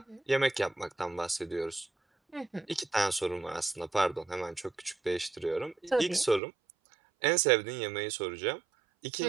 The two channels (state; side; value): drops out; left; at 6.4 s